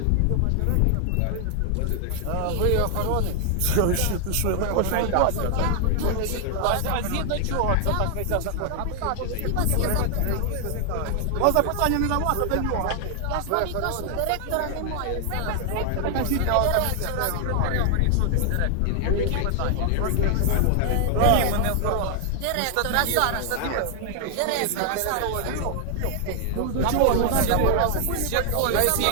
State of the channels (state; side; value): different; both; correlation 0.00